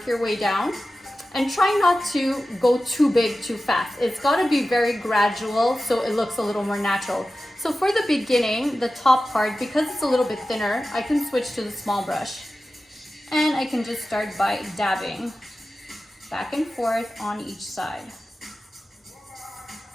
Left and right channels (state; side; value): normal; both; correlation 0.94